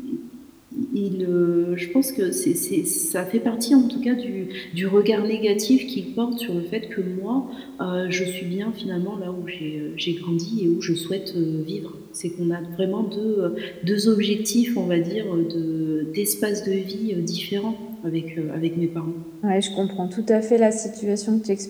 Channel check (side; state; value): both; identical; correlation 1.00